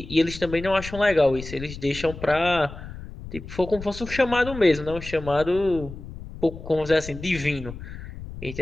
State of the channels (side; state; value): left; noise; rumble, 12 dB below the sound